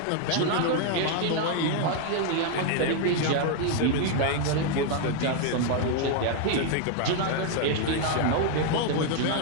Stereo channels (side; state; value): both; different; correlation 0.00